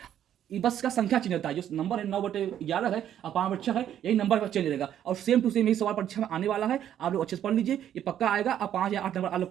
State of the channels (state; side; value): quieter; left; 10.5 dB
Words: ये बस का संख्या चेंज होता है, जो नंबर है 9/11 है और 5/6 है, यही नंबर का चेंज रहेगा और सेम टू सेम यही सवाल परीक्षा में आने वाला है। आप लोग अच्छे से पढ़ लीजिए, ये पक्का आएगा, आप 5 या 8 नंबर आप लोग